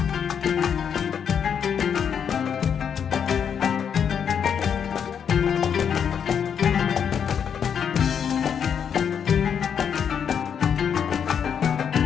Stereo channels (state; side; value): quieter; right; 7.7 dB